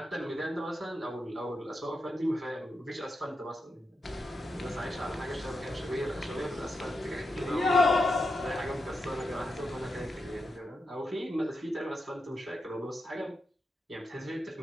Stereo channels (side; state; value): both; normal; correlation 0.87